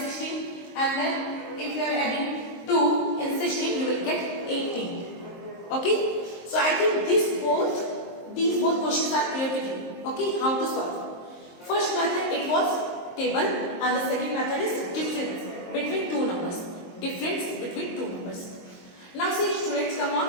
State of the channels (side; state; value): right; late; 23 ms